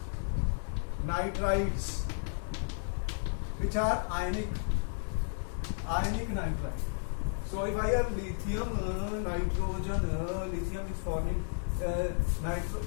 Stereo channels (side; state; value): right; silent; 56 dB below the other